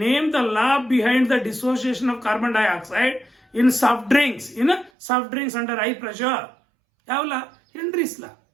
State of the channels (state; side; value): drops out; left; at 4.9 s